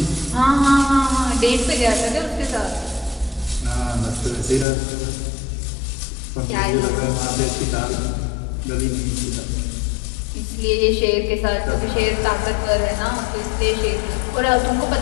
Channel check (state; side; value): drops out; right; at 4.7 s